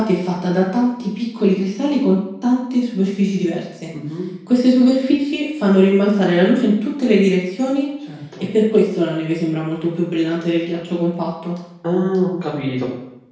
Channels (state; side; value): identical; both; correlation 1.00